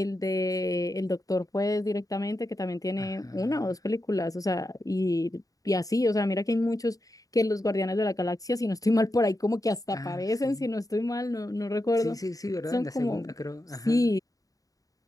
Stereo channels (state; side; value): late; right; 0.17 ms